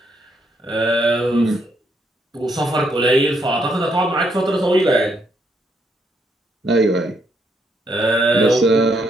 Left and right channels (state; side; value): normal; both; correlation 0.75